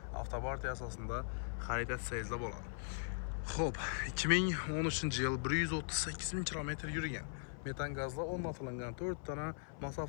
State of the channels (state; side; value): silent; right; 51 dB below the other